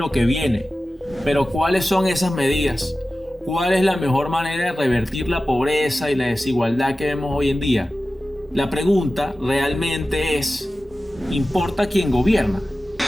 que viene. Pero ¿cuáles son esas medidas? ¿Cuál es la mejor manera de revertir la pobreza y la desigualdad que vemos hoy en día? La pregunta realmente es, ¿importa quién gobierna?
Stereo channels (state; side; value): normal; both; correlation 0.95